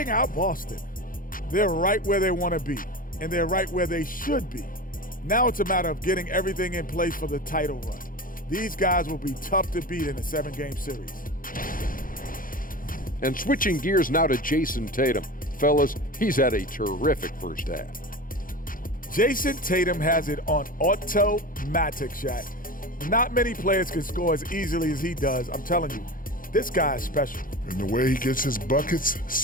out Boston. They're right where they want to be, and they're right where they should be. Now it's a matter of getting everything in place for the title run. These guys will be tough to beat in a 7-game series. And switching gears now to Jason Tatum. Fellas, he's had a terrific first half. Jason Tatum has it on automatic, Shaq. Not many players can score as easily as he does. I'm telling you, this guy is special. And the way he gets his buckets,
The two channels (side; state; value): right; late; 0.40 ms